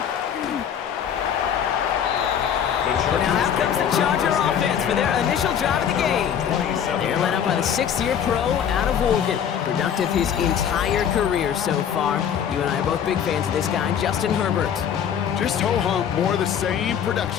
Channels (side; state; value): right; quieter; 8.6 dB